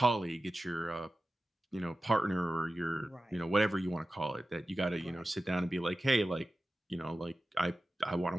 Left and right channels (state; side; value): normal; both; correlation 0.94